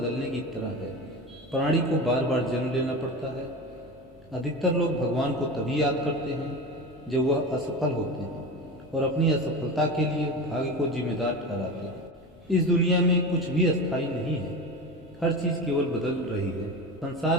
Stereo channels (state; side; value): normal; both; correlation 0.27